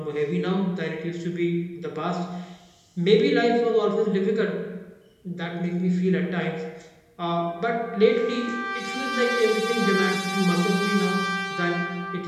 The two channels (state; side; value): identical; both; correlation 1.00